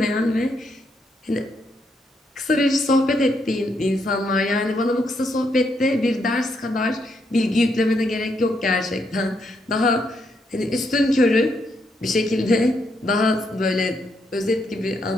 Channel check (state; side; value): normal; both; correlation 0.77